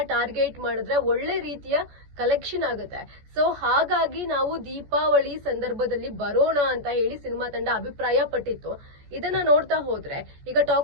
ಟಾರ್ಗೆಟ್ ಮಾಡಿದ್ರೆ ಒಳ್ಳೆ ರೀತಿಯ ಕಲೆಕ್ಷನ್ ಆಗುತ್ತೆ. ಸೊ ಹಾಗಾಗಿ ನಾವು ದೀಪಾವಳಿ ಸಂದರ್ಭದಲ್ಲಿ ಬರೋಣ ಅಂತ ಹೇಳಿ ಸಿನಿಮಾ ತಂಡ ಅಭಿಪ್ರಾಯ ಪಟ್ಟಿತ್ತು. ಇದನ್ನ ನೋಡ್ತಾ ಹೋದ್ರೆ ಈಗ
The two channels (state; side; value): late; left; 14 ms